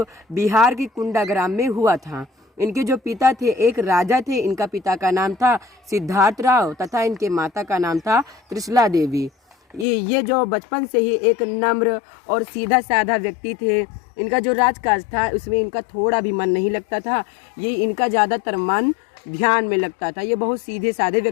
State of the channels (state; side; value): drops out; right; at 9.9 s